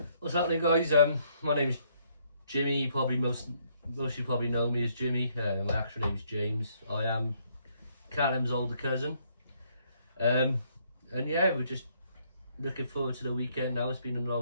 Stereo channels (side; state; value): both; inverted; correlation -0.69